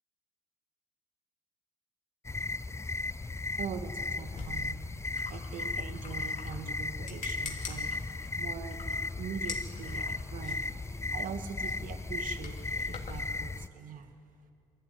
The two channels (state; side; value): normal; both; correlation 0.25